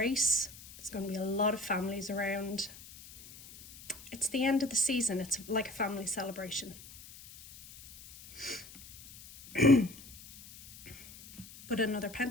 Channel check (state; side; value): noise; left; hiss, 18 dB below the sound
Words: There's going to be a lot of families around. It's the end of the season. It's like a family celebration. But another